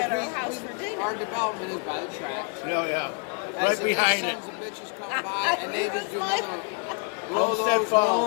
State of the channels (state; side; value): quieter; right; 36.6 dB